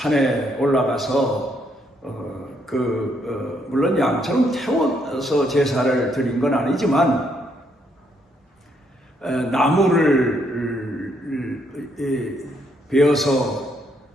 올라가서 물론 양처럼 태워서 제사를 드린 건 아니지만 나무를 베어서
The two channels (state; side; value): normal; both; correlation 0.73